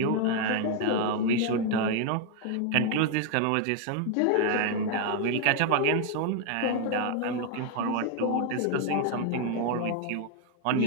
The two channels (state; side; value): different; both; correlation 0.00